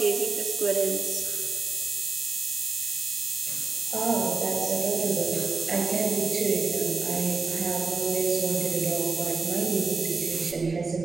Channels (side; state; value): left; quieter; 4.3 dB